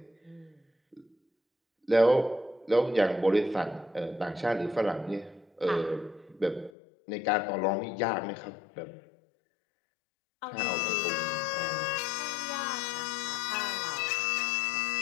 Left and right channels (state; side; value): drops out; right; at 6.7 s